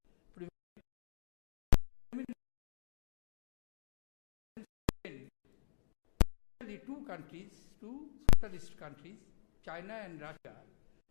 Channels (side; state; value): right; silent; digital silence